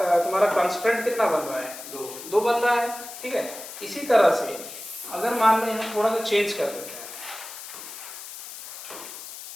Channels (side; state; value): left; noise; hiss, 12 dB below the sound